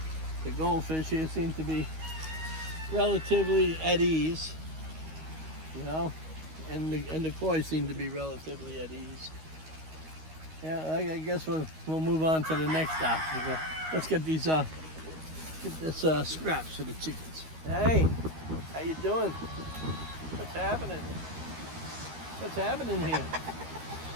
the goldfish here seem to be relatively at ease, and the koi seem to be relatively at ease. Yeah, I guess we'll move on to the next obstacle. Let's get these scraps for the chickens. Hey, how you doing? What's happening? What's happening here?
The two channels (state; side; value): late; left; 13 ms